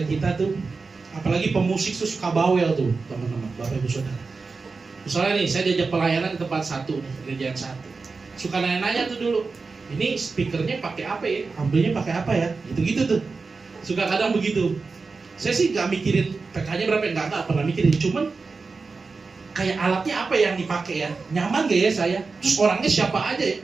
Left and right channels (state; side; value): quieter; left; 4.3 dB